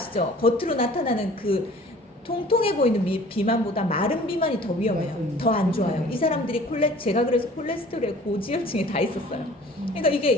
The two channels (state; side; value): normal; both; correlation 0.49